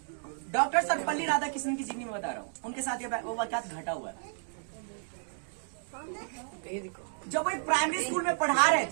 डॉक्टर सर्वपल्ली राधाकृष्णन की जीवनी में बता रहा हूँ। उनके साथ ये वो वाकयात घटा हुआ है। जब वो प्राइमरी स्कूल में पढ़ा रहे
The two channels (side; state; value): left; silent; digital silence